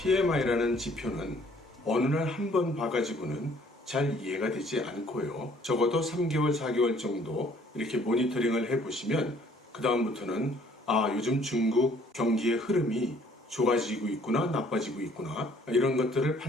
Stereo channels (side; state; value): both; normal; correlation 0.59